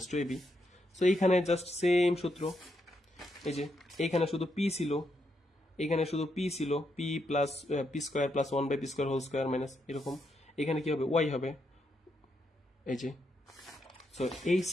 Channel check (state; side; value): normal; both; correlation 0.80